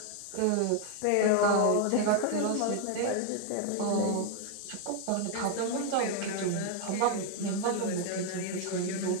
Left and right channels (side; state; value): both; different; correlation 0.00